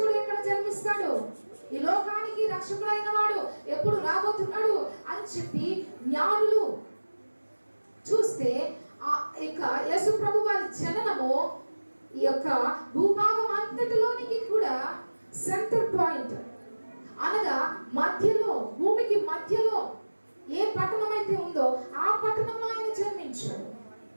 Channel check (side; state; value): both; inverted; correlation -1.00